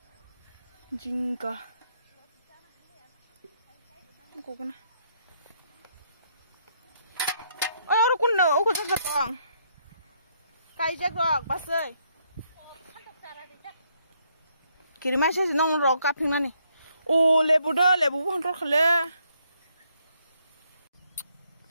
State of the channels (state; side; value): inverted; both; correlation -0.73